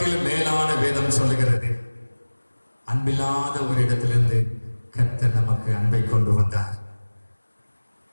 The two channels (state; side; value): inverted; both; correlation -1.00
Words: மேலான வேதம் சொல்லுகிறது, அன்பில்லாத ஒரு இடத்திலிருந்து கர்த்தர் நமக்கு அன்பை கொண்டு வந்தார்.